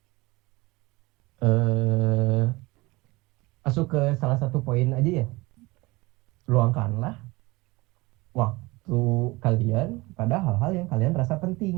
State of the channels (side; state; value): left; quieter; 22.7 dB